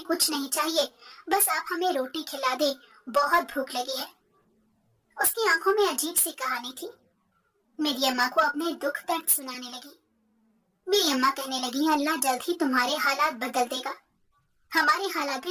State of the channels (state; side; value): identical; both; correlation 1.00